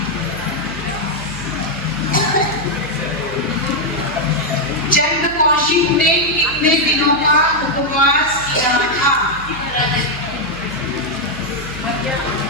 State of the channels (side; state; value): right; noise; hum, 14 dB below the sound